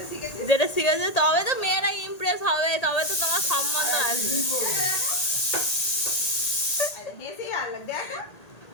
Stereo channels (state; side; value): late; right; 1.8 ms